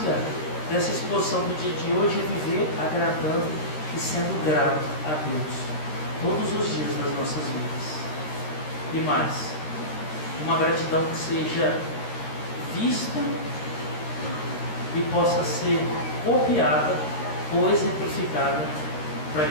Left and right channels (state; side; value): late; right; 13 ms